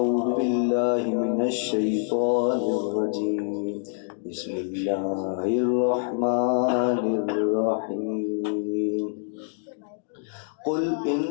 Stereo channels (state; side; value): silent; right; digital silence